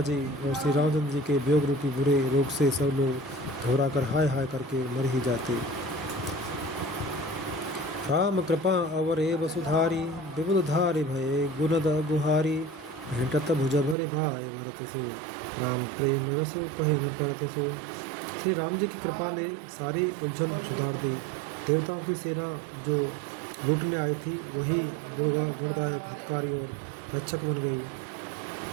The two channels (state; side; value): drops out; left; at 14.0 s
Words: जी और श्री रामचंद्र जी के वियोग रूपी बुरे रोग से सब लोग घबराकर हाय हाय करके मर ही जाते। राम कृपा अवरे वसुधारी, विबुध धारी भये गुणद गुहारी, भेंटत भुज भरे भाई भरत सो, राम प्रेम रसो कहे न परत सो। श्री राम जी की कृपा ने सारी उलझन सुधार दी। देवताओं की सेना जो लूटने आई थी वही गुणदायक, हितकारी और रक्षक बन गई।